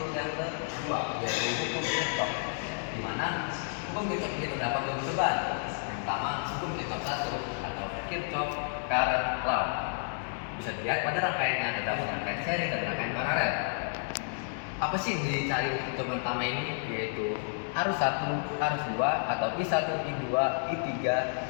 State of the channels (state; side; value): silent; right; digital silence